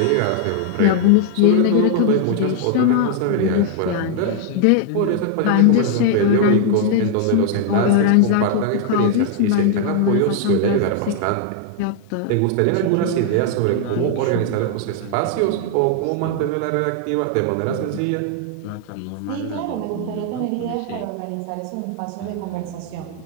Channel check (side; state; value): both; different; correlation 0.00